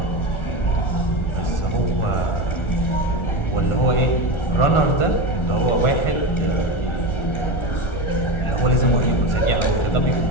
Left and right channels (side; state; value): right; late; 1.4 ms